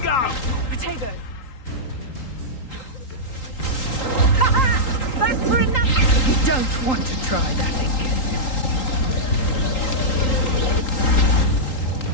Potato! Back for another! You don't want to try that again.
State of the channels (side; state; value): right; late; 3.8 ms